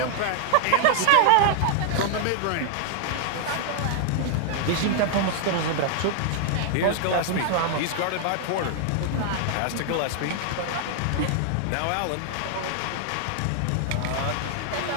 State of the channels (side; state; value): both; different; correlation 0.00